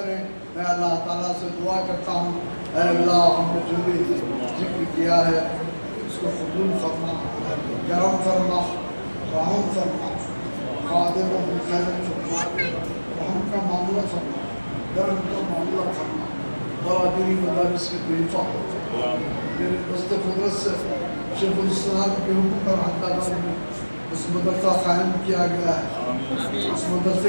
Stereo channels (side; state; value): both; inverted; correlation -1.00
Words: میں اللہ تعالیٰ سے دعا کرتا ہوں، اے اللہ ہم نے جو بھی ذکر کیا ہے اس کو قبول فرما، کرم فرما، رحم فرما، خادم و خیر فرما، رحم کا معاملہ فرما، درم کا معاملہ فرما، برادری مدارس کی بے حفاظت فرما۔ میرے دست قدرت سے شیخ الاسلام کے حکم پر حیدرآباد میں اس مدرسہ قائم کیا گیا ہے، اس مدرسے